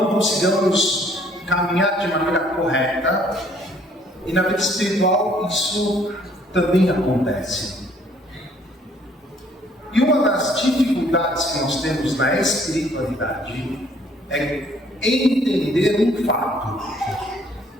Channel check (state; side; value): normal; both; correlation 0.61